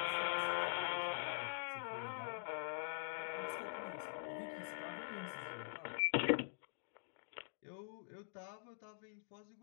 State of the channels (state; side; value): silent; right; digital silence